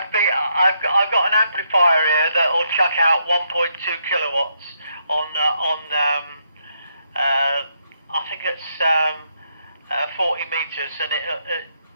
got an amplifier here that will chuck out 1.2 kilowatts on I think it's 40 meters, and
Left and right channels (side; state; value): both; inverted; correlation -0.76